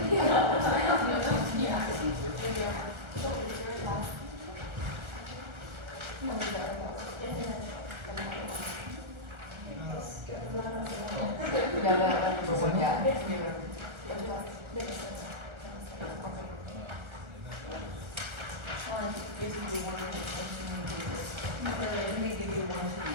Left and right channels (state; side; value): late; left; 1.4 ms